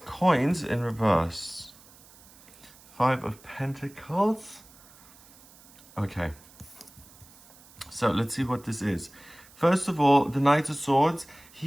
Coins in reverse. Five of Pentacles. Okay. So let's see what this is. First of all, the Knight of Swords.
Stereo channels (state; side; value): noise; right; hiss, 24 dB below the sound